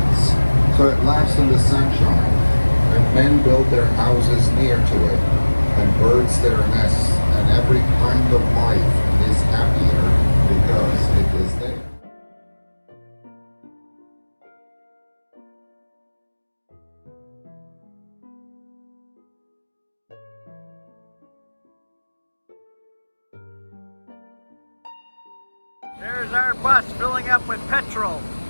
so it laughs in the sunshine, and men build their houses near to it, and birds their nests, and every kind of life is happier because it is there. There's our bus filling up with petrol,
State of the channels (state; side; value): inverted; both; correlation -1.00